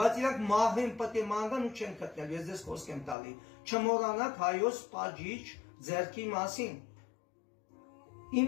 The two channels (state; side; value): drops out; right; at 3.2 s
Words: իրանք մահվեն պետք է մանրան ու չեն գտնել, ես ձեզ խոսք եմ տալի։ Չմոռանաք հայոց պատժիչ ձեռքի մասին։